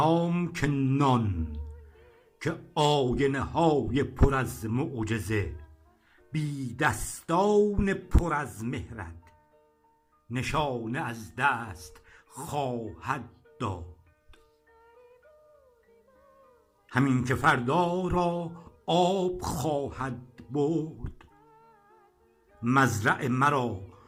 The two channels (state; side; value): identical; both; correlation 1.00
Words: که نان، که آینه های پر از معجزه، بی دستان پر از مهرت نشانه از دست خواهد داد. همین که فردا را آب خواهد برد، مزرع مرا